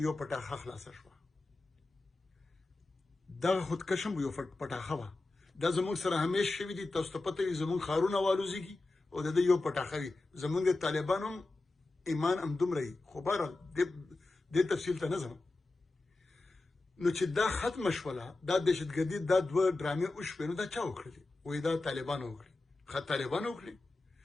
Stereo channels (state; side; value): quieter; right; 3.2 dB